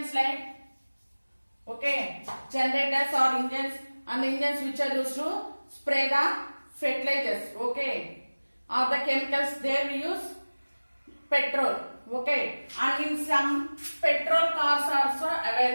like generators or engines, and the engines which are used to spray the fertilizers, or the chemicals, there we use petrol. And in some petrol cars also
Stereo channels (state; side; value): inverted; both; correlation -1.00